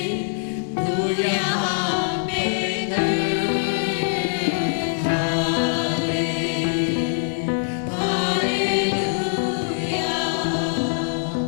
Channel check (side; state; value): right; silent; 63 dB below the other